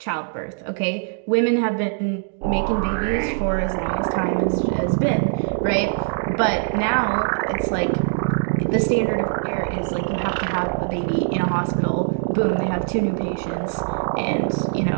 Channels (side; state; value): left; silent; 64 dB below the other